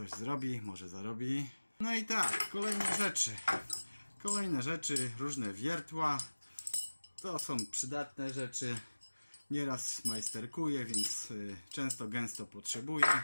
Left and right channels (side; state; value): both; inverted; correlation -1.00